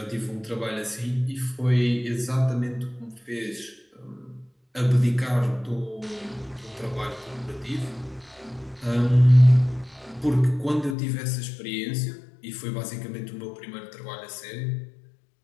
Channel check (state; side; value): drops out; right; at 11.0 s